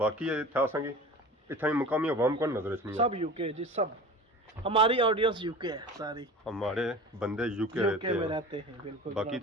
बाकी था संगी इतना मुकामी अवाम को नजर रखनी सब यूके जी सब हमारी ऑडियंस यूके है सारी हमारे बंदे यूके में रहते हैं बिल्कुल। बाकी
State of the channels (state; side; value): normal; both; correlation 0.37